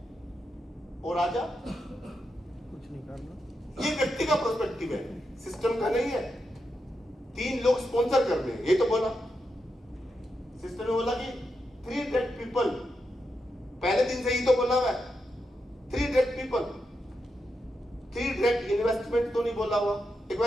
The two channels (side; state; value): both; normal; correlation 0.86